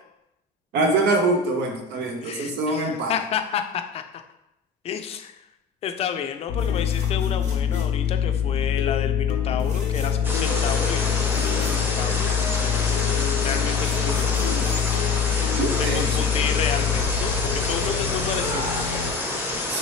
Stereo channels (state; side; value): quieter; right; 4.6 dB